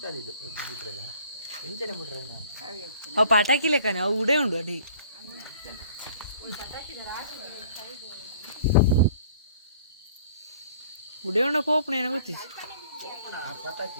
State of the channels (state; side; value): inverted; both; correlation -0.53